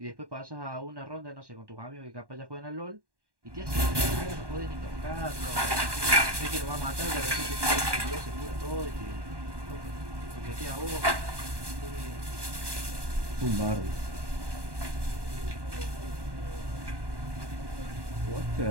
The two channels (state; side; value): late; left; 1.1 ms